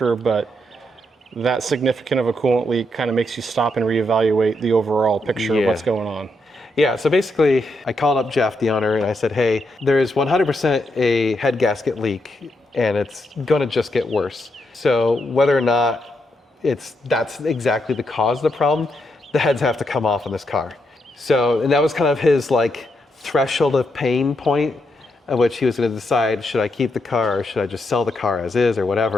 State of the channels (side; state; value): both; normal; correlation 0.81